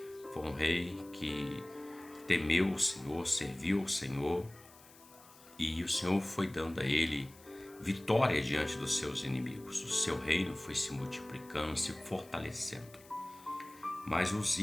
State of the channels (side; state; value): left; noise; hiss, 23 dB below the sound